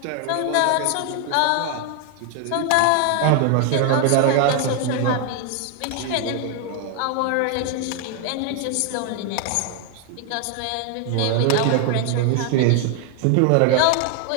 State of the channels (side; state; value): both; different; correlation 0.00